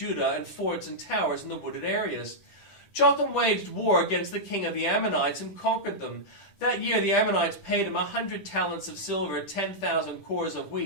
and forts and towers in the wooded areas. Jotham waged war against the king of the Ammonites and conquered them. That year the Ammonites paid him 100 talents of silver, 10,000 cores of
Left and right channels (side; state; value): right; late; 10 ms